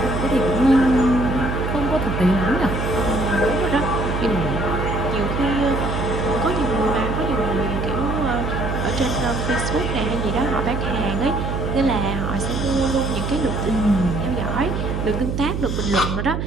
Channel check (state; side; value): noise; right; hum, 2 dB below the sound